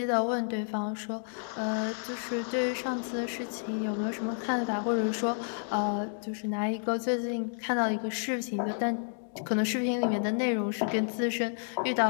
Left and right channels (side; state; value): right; silent; digital silence